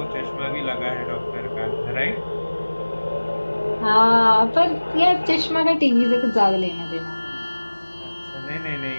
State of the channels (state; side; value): inverted; both; correlation -1.00